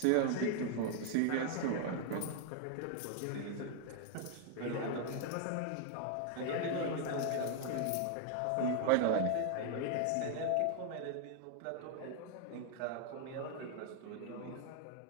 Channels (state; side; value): different; both; correlation 0.00